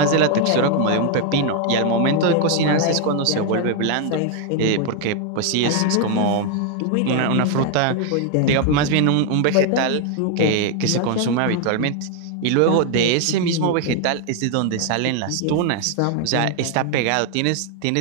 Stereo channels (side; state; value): both; different; correlation 0.00